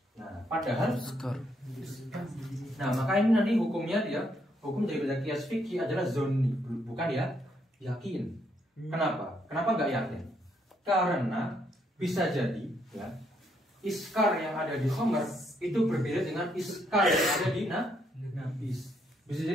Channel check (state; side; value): normal; both; correlation 0.74